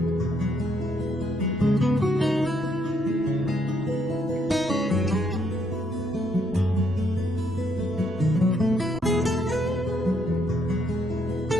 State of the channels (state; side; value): normal; both; correlation 0.72